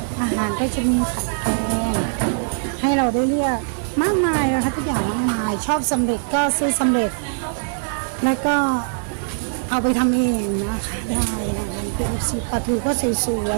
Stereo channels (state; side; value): silent; left; digital silence